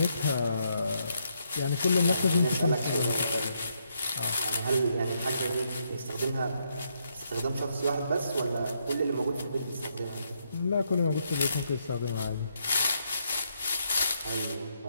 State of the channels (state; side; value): inverted; both; correlation -0.77